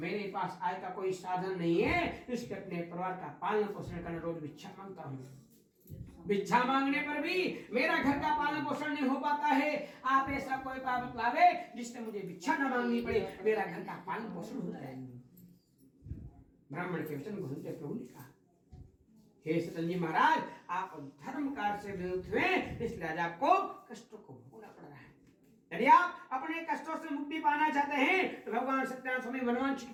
पास आय का कोई साधन नहीं है, इसके अपने परिवार का पालन पोषण करने रोज भिक्षा मांगता हूँ। भिक्षा मांगने पर भी मेरा घर का पालन पोषण नहीं हो पाता है। आप ऐसा कोई उपाय बतलावे जिससे मुझे भिक्षा न मांगनी पड़े, मेरा घर का पालन पोषण हो जाए। ब्राह्मण के वचन को सुनते प्रभु ने कहा, हे सतन जी महाराज, आप धर्म कार्य से विमुक्त हुए, इसलिए आज आपको कष्टों को भोगना पड़ रहा है। यदि आप अपने कष्टों से मुक्ति पाना चाहते हैं तो भगवान सत्यनारायण स्वामी मनवांछित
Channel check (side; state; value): both; identical; correlation 1.00